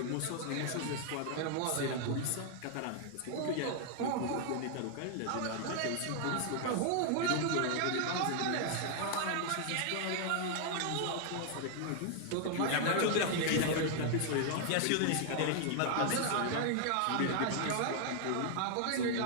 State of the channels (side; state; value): both; different; correlation 0.00